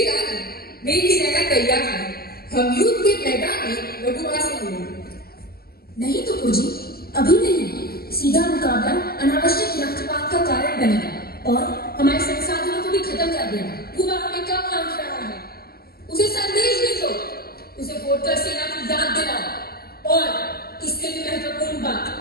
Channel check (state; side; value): late; right; 0.44 ms